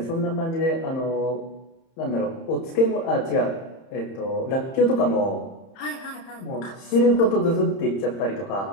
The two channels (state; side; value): late; right; 31 ms